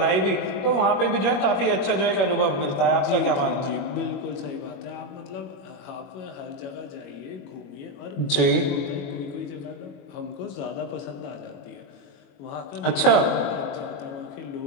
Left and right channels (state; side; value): late; right; 21 ms